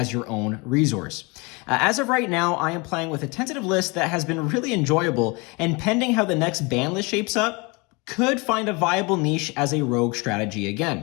your own resource. As of right now, I am playing with a tentative list that has been really enjoyable, and pending how the next ban list shapes up, could find a viable niche as a rogue strategy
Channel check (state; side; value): quieter; right; 27.7 dB